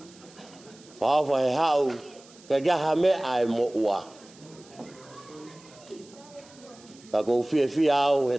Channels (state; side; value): noise; right; hiss, 24 dB below the sound